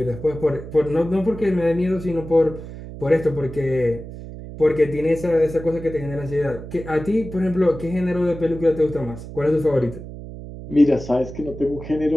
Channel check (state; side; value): noise; right; hum, 12 dB below the sound